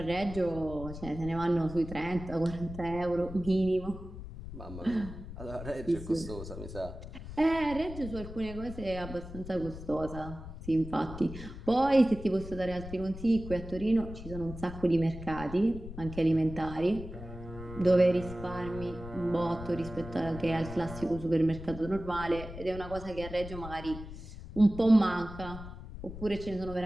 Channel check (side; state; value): left; noise; rumble, 11 dB below the sound